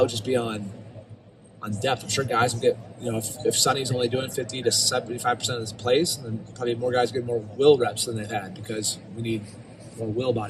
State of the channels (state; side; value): identical; both; correlation 1.00